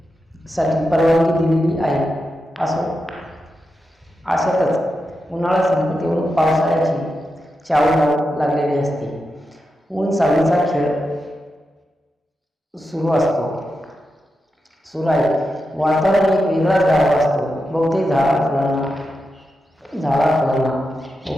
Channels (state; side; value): normal; both; correlation 0.88